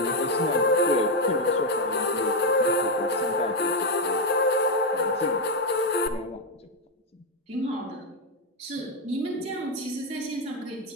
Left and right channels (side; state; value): both; normal; correlation 0.04